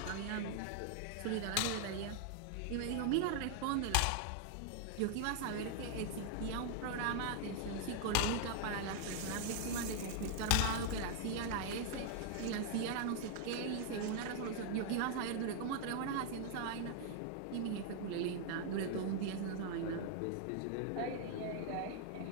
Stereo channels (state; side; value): different; both; correlation 0.00